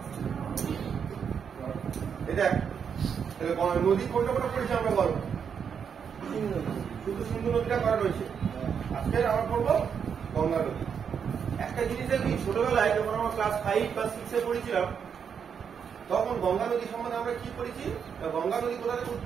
আমার নদী কোনটা কোনটা পড়েছে আমরা বলবো শুধু সিন্ধু নদীটা করা রয়েছে। আজকে আমরা পড়বো গঙ্গা নদী। একটা জিনিস দেখি, ছোটবেলায় যখন আমরা ক্লাস 5 বা 6 এ পড়েছিলাম তখন গঙ্গা নদী সম্বন্ধে আমরা কি পড়েছি? গঙ্গা নদী কোথা থেকে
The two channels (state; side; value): quieter; left; 7.1 dB